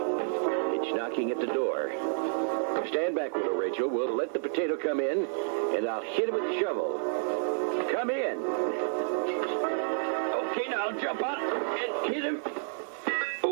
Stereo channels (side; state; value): left; silent; 58 dB below the other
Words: It's knocking at the door. Stand back, Widow Rachel. We'll let the potato come in, and I'll hit it with the shovel. Come in. Okay, now jump out and hit him.